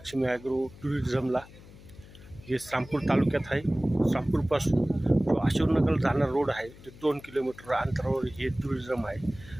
agro टुरिझमला. हे रामपूर तालुक्यात आहे. रामपूरपासून जो अशोकनगर जाणारा रोड आहे ते 2 किलोमीटर अंतरावर हे टुरिझम आहे.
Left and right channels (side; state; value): left; noise; hum, 20 dB below the sound